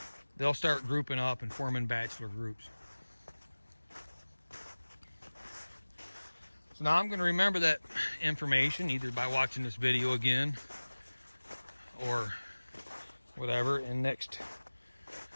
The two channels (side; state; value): both; inverted; correlation -1.00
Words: they'll start grouping up and forming bachelor groups. So now I'm going to remember that information either by watching this video again or whatever, and next